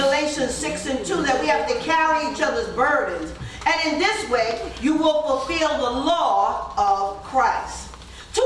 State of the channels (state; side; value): identical; both; correlation 1.00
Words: 6:2 that we have to carry each other's burdens. And in this way, you will fulfill the law of Christ. Two